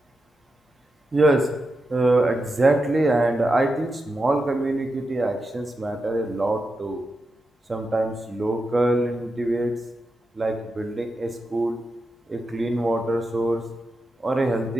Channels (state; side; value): normal; both; correlation 0.88